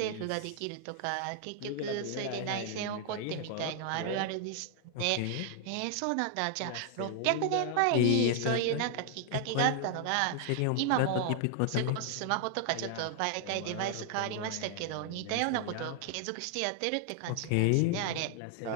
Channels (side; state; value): both; different; correlation 0.00